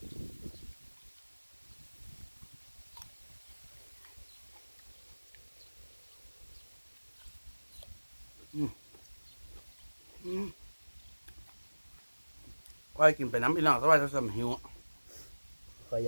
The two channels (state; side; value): inverted; both; correlation -1.00